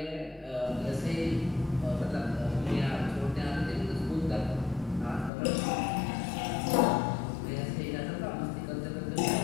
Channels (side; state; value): right; drops out; at 5.3 s